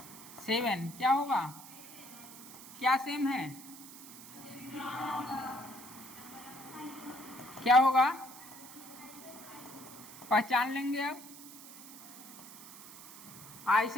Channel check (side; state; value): right; noise; hiss, 15 dB below the sound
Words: 7 क्या होगा? क्या सेम है? क्या होगा? पहचान लेंगे अब।